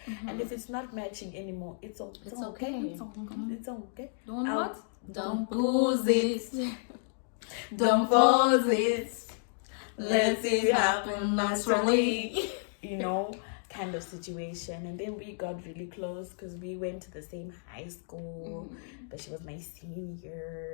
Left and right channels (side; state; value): right; silent; digital silence